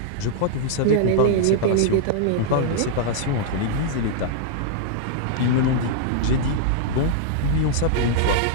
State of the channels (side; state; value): both; different; correlation -0.01